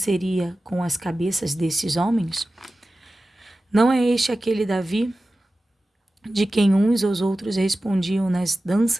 com as cabeças desses homens? Não é este aquele Davi, de quem uns aos outros respondiam nas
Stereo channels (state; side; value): normal; both; correlation 0.95